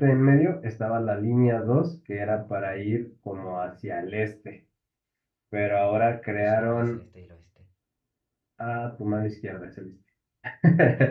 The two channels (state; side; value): identical; both; correlation 1.00